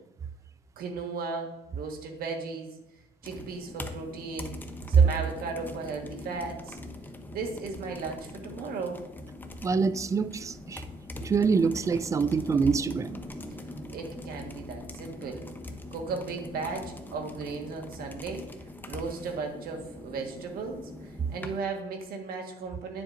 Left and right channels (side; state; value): left; quieter; 4.4 dB